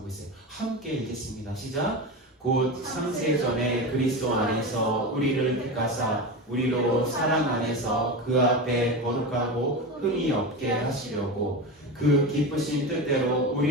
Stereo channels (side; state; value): both; normal; correlation 0.23